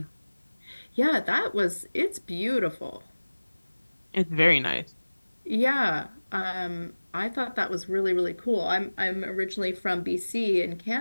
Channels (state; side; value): inverted; both; correlation -1.00